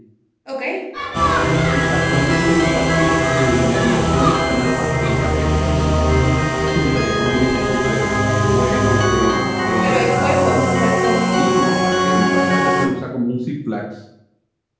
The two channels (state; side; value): identical; both; correlation 1.00